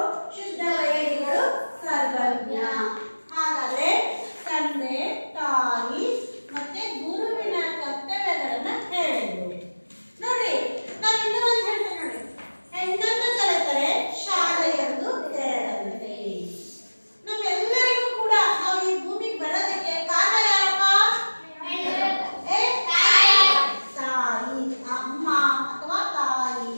ಶುದ್ಧ ವೈರಿಗಳು ಸರ್ವಜ್ಞ. ಹಾಗಾದ್ರೆ ತಂದೆ, ತಾಯಿ ಮತ್ತೆ ಗುರುವಿನ ಕರ್ತವ್ಯಗಳನ್ನ ಹೇಳಿದ್ರು. ನೋಡಿ, ನಾವು ಇನ್ನೂ ಒಂದು ಹೇಳ್ತೇವೆ ನೋಡಿ, ಹೆಣ್ಣನ್ನು ಕಲಿತರೆ ಶಾಲೆಯೊಂದು ತೆರೆದಂತೆ. ನಮ್ಮೆಲ್ಲರಿಗೂ ಕೂಡ ನಾವು ಈ ಭೂಮಿಗೆ ಬರೋದಕ್ಕೆ ಕಾರಣ ಯಾರಪ್ಪ? ತಾಯಿ, ಅಮ್ಮ ಅಥವಾ ತಾಯಿ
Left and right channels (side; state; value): both; inverted; correlation -1.00